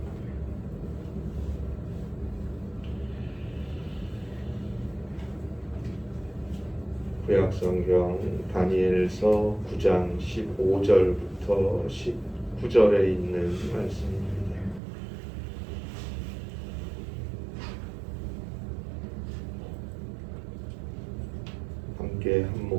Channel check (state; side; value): drops out; left; at 14.8 s